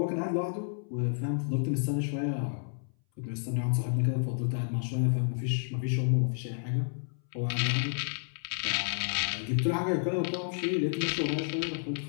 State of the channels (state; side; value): silent; right; 57 dB below the other